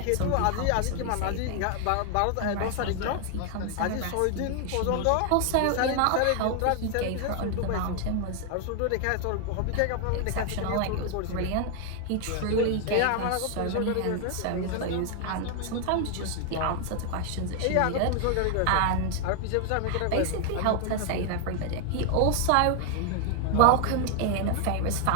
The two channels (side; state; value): both; different; correlation 0.00